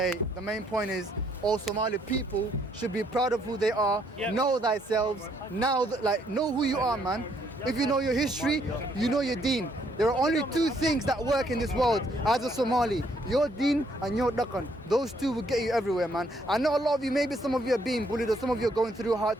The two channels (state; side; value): normal; both; correlation 0.69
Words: the main point is all Somali people should be proud of who they are. Know thyself. Know who you are, man. If you know your history, you know your deen. There are only two things that work in this world as a Somali: your deen and your dhaqan. Those two will get you everywhere, man. I know a lot of you, maybe some of you are being bullied or some of you are going through